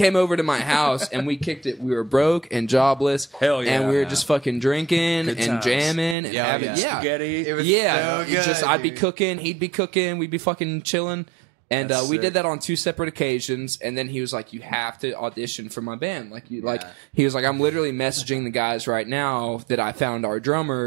over to my house, and we kicked it. We were broke and jobless, Hell yeah. and we were just fucking drinking Good and times. jamming and Yeah, having yeah. yeah. Spaghetti. It was Yeah, so good, I'd be dude. cooking, he'd be cooking, we'd be fucking chilling. And That's we sick. did that on 2 separate occasions. And then he was like, "You have to audition for my band." Like Yeah. he was like, "I'm literally messaging the guys right now that I found our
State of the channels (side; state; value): left; drops out; at 6.2 s